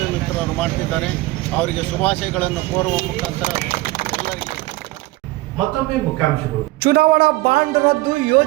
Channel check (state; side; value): quieter; left; 19.3 dB